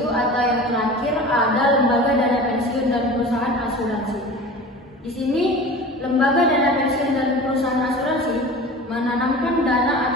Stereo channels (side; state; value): both; normal; correlation 0.36